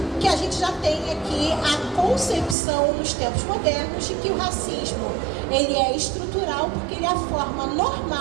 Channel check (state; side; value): drops out; left; at 2.6 s